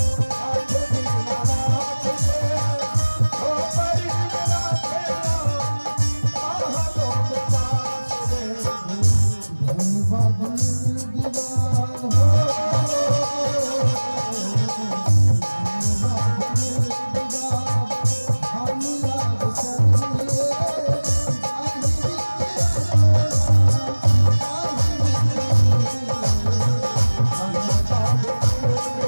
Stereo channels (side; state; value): both; inverted; correlation -1.00